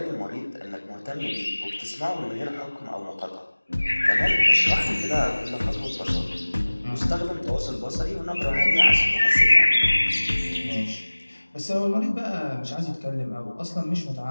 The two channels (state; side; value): inverted; both; correlation -1.00